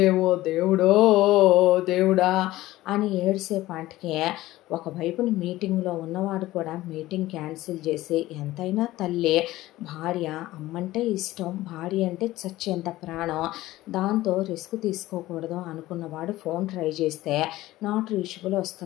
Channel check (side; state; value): right; quieter; 16.7 dB